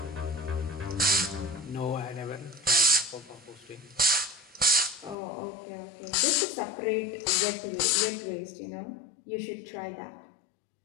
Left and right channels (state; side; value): drops out; right; at 5.2 s